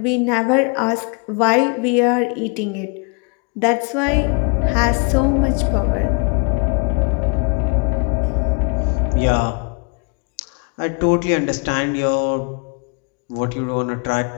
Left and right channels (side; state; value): right; quieter; 33.8 dB